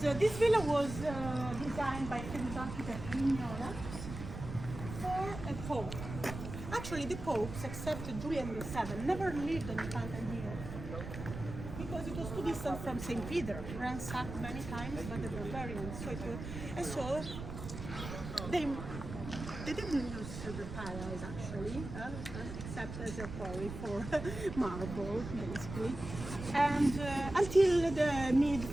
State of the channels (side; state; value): right; noise; rumble, 9 dB below the sound